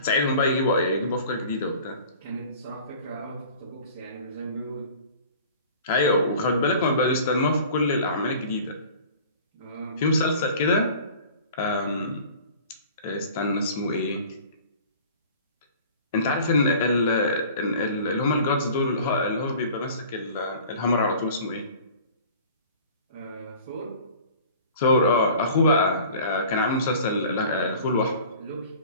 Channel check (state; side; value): inverted; both; correlation -0.45